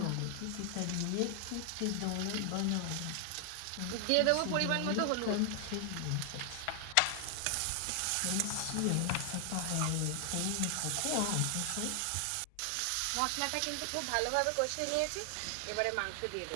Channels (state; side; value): different; both; correlation 0.00